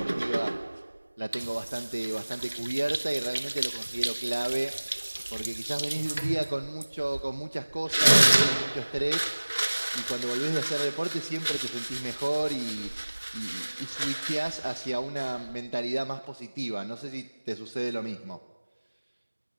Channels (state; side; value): inverted; both; correlation -1.00